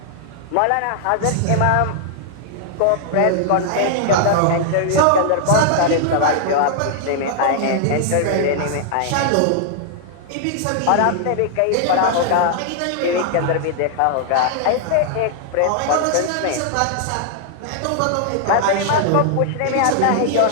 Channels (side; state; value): both; different; correlation 0.00